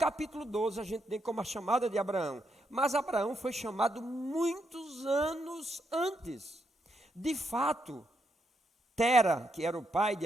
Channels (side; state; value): both; normal; correlation 0.80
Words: 12 a gente tem como a chamada de Abraão, mas Abraão foi chamado muitos anos antes. De fato, Tera, que era o pai